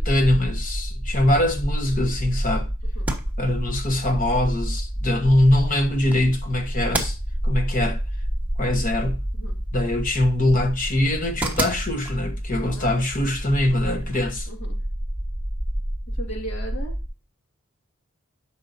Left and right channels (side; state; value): both; normal; correlation 0.77